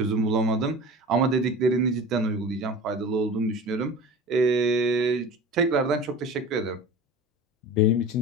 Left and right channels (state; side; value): normal; both; correlation 0.36